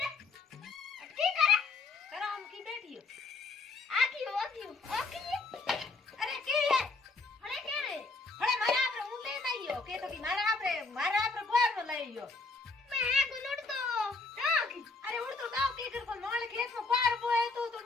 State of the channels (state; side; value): quieter; right; 3.9 dB